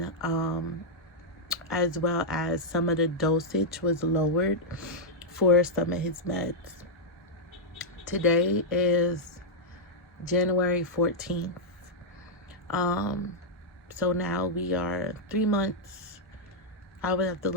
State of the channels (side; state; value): both; normal; correlation -0.06